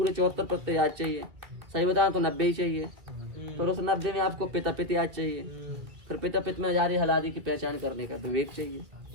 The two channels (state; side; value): late; left; 2.1 ms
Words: 74 प्रत्यय याद चाहिए। सही बताएं तो 90 ही चाहिए। फिर उस 90 में आपको पिता पित याद चाहिए। फिर पिता पित में जारी हलादि की पहचान करने का विवेक चाहिए।